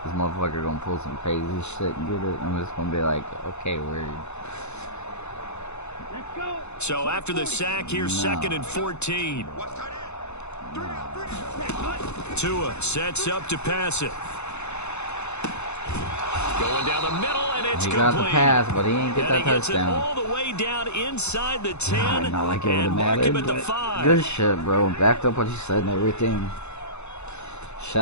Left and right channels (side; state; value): right; late; 0.81 ms